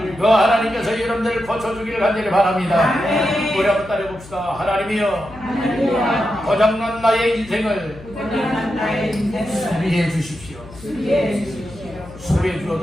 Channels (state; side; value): noise; left; hum, 19 dB below the sound